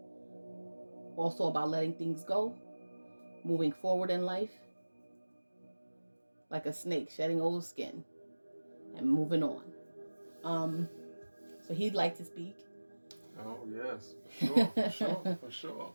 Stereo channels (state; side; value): inverted; both; correlation -1.00